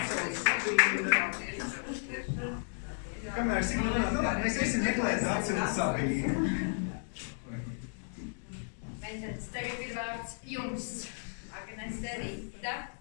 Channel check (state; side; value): silent; right; digital silence